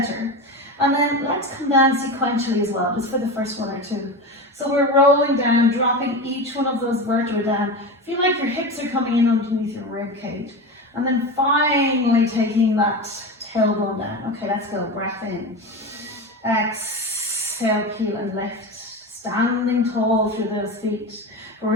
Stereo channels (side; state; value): both; normal; correlation 0.24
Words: And then let's come down sequentially as well, just for the first one or two. So we're rolling down, dropping each one of those vertebrae down. Feel like your hips are coming in underneath your rib cage. And then finally taking that tailbone down. Okay, let's go. Breath in. Exhale, peel and lift. Standing tall through those feet.